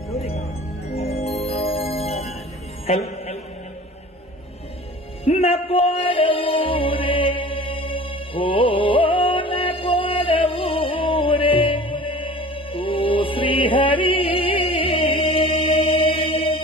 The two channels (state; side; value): normal; both; correlation 0.42